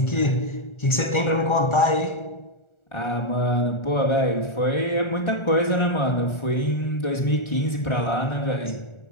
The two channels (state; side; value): late; right; 1.4 ms